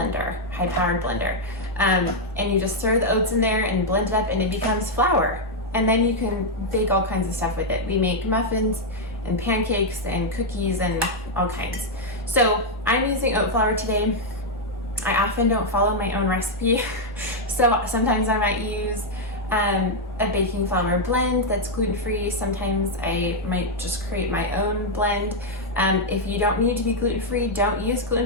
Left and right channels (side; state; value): both; normal; correlation -0.01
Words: blender. And you just throw the oats in there and blend it up and it becomes flour. And then you can bake all kinds of stuff with it. We make muffins and pancakes and cookies and all kinds. So I'm using oat flour today. I often don't follow my own recipe. So sometimes I might use a baking flour blend that's gluten-free. Sometimes I might just create my own blend. If you don't need to be gluten-free, don't use